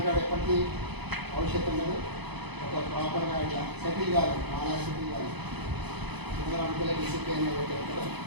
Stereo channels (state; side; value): late; left; 0.99 ms